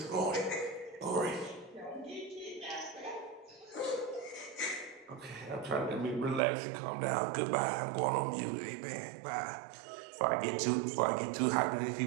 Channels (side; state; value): left; drops out; at 6.4 s